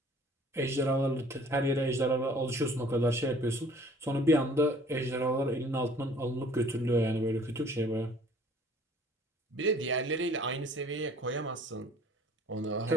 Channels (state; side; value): normal; both; correlation 0.53